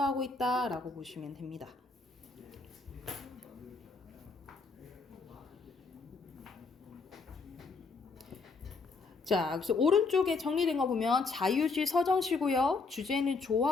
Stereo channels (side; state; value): right; quieter; 4.2 dB